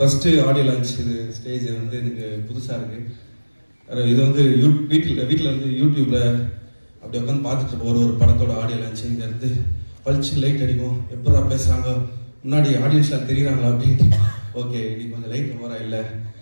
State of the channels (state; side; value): inverted; both; correlation -1.00